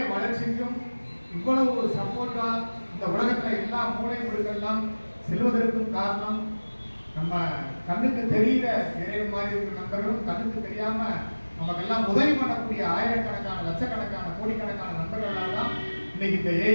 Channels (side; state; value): both; inverted; correlation -1.00